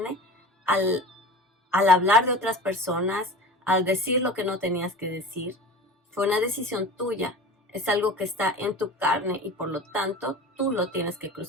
al hablar de otras personas, al decir lo que no tenías que decir. Fue una decisión tuya. Es algo que está en tu carne y por lo tanto tú lo tienes que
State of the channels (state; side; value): normal; both; correlation 0.36